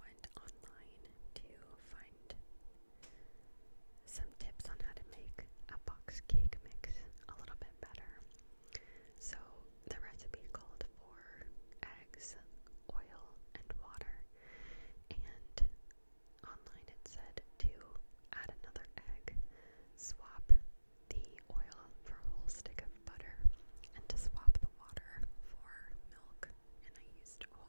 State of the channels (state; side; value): inverted; both; correlation -1.00